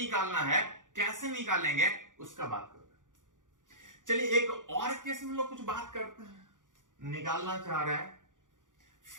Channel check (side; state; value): left; late; 0.88 ms